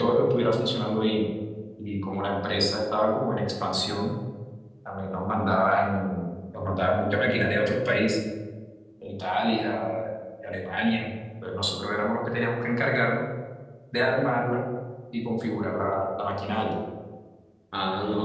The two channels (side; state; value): both; identical; correlation 1.00